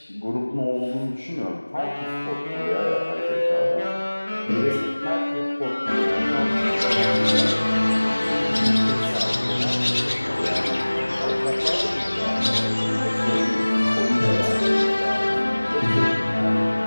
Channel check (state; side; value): inverted; both; correlation -1.00